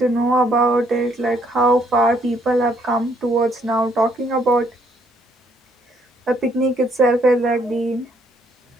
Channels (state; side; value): normal; both; correlation 0.68